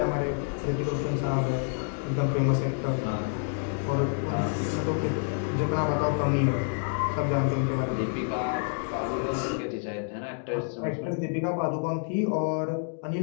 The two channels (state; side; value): silent; right; 59 dB below the other